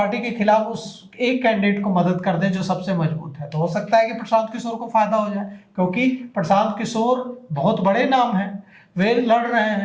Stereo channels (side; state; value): both; identical; correlation 1.00